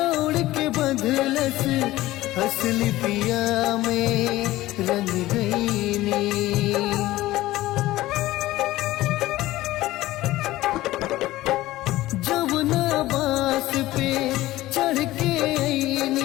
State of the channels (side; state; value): right; quieter; 16.7 dB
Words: के बदलस असली पिया में रंग गईनी। जमुना बास पे चढ़ के